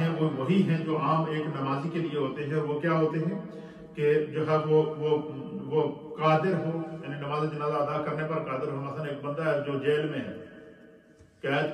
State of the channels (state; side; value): identical; both; correlation 1.00